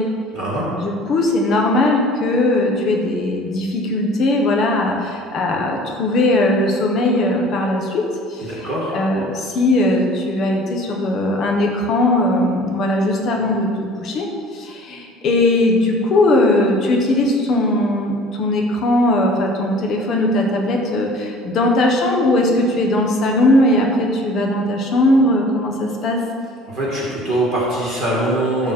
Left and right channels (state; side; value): normal; both; correlation 0.48